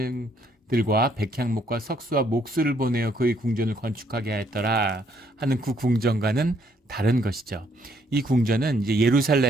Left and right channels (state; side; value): normal; both; correlation 0.69